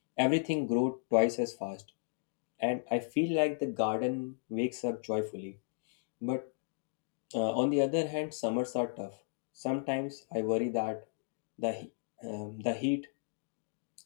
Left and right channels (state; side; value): silent; right; digital silence